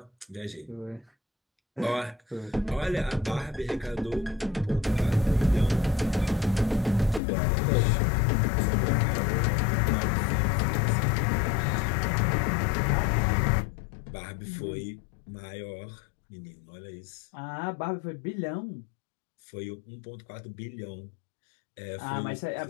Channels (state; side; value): drops out; right; at 7.2 s